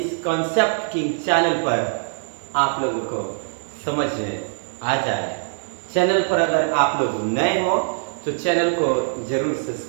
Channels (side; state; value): left; silent; digital silence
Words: कंसेप्ट की चैनल पर आप लोगों को समझ में आ जाए। चैनल पर अगर आप लोग नए हो तो चैनल को जरूर